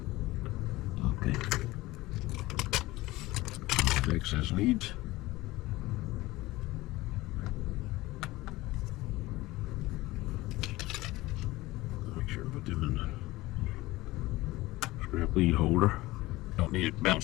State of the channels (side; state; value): right; quieter; 19.0 dB